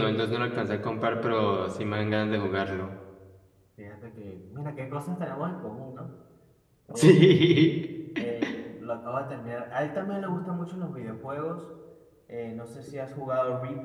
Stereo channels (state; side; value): identical; both; correlation 1.00